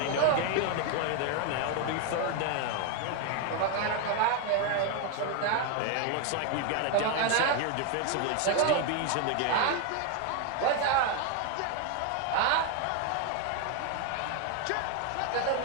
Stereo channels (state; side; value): different; both; correlation 0.01